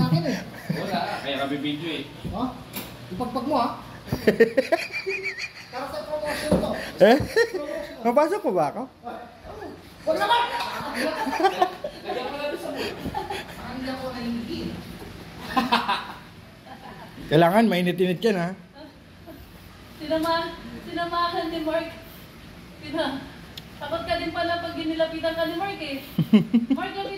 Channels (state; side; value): identical; both; correlation 1.00